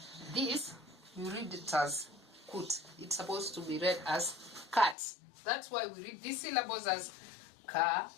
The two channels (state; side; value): drops out; right; at 5.0 s